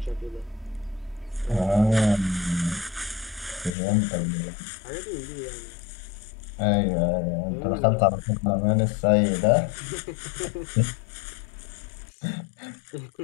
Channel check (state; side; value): drops out; right; at 3.8 s